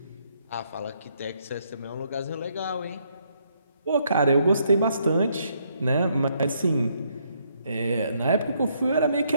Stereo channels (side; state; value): both; inverted; correlation -0.72